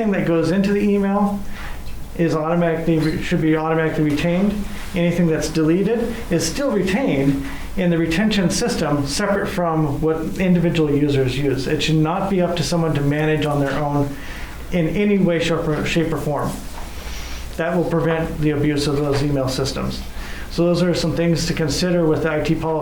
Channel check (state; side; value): identical; both; correlation 1.00